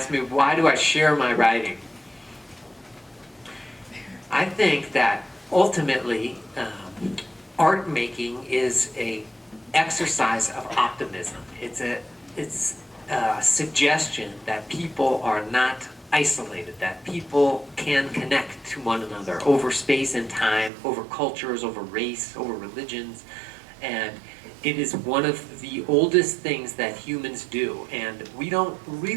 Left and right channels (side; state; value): left; drops out; at 20.7 s